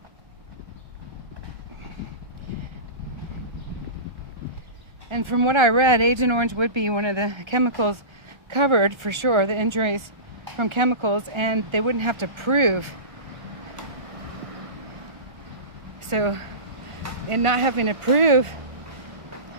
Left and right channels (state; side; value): late; left; 1.3 ms